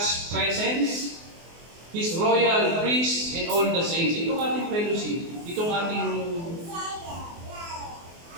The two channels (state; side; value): late; left; 24 ms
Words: presence, His royal priest, and all the saints. Itong ating fellowship, itong ating